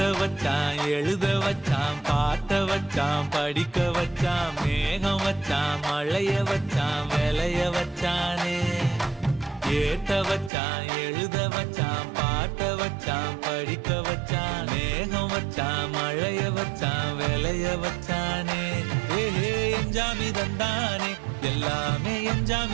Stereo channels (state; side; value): drops out; left; at 10.5 s